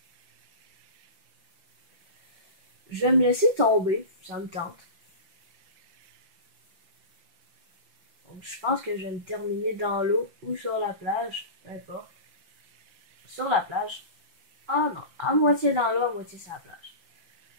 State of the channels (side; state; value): left; late; 5.8 ms